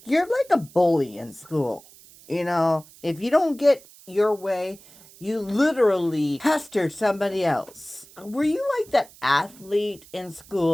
You're like a bully in school. You know, if you don't get your way, you literally pestered somebody else. Were you like that athlete in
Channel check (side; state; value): right; noise; hiss, 23 dB below the sound